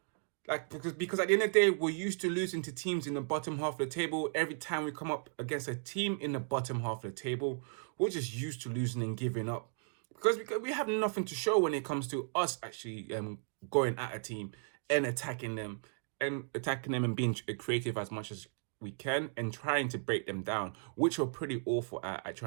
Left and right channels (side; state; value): left; silent; 54 dB below the other